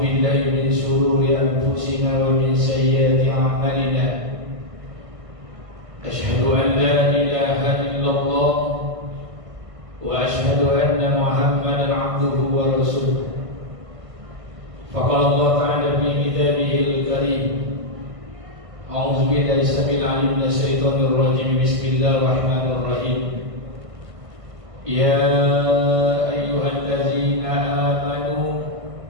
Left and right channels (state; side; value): late; left; 1.5 ms